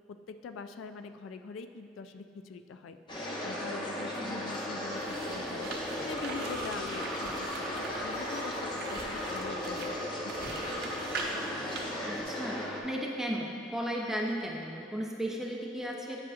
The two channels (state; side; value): normal; both; correlation 0.47